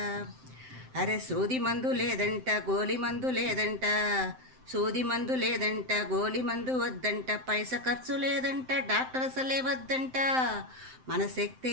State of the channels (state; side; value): late; left; 7.7 ms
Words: అరే సూది మందు లేదంట, గోలి మందు లేదంట, సూది మందు లేదంట, గోలి మందు వద్దంట, పైస ఖర్చు లేదంట, డాక్టర్ అసలే వద్దంట. మన